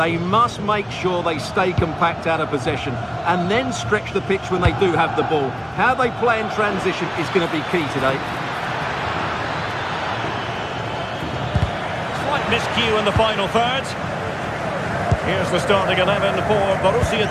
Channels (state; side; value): identical; both; correlation 1.00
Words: must make sure they stay compact out of possession and then stretch the pitch when they do have the ball. How they play in transition is going to be key today. Slight miscue in the final third. Here's the starting 11 for Borussia